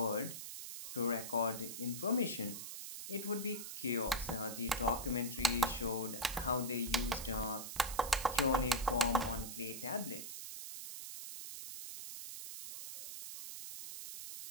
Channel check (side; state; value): right; noise; hiss, 8 dB below the sound